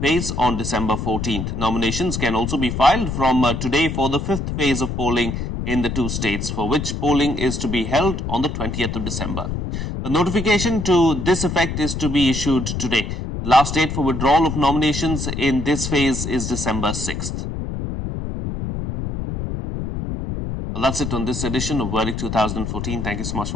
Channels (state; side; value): noise; left; rumble, 4 dB below the sound